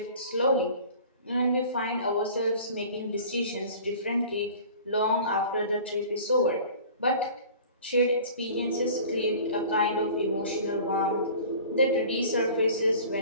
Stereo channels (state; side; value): inverted; both; correlation -0.44